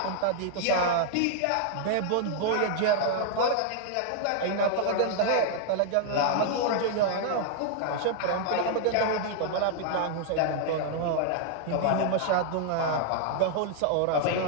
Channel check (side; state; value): both; different; correlation -0.01